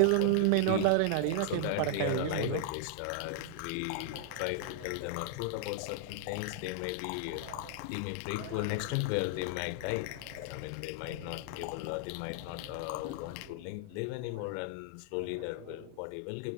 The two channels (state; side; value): different; both; correlation -0.01